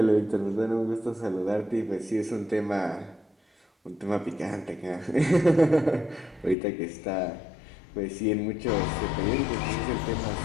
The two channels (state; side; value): drops out; right; at 6.6 s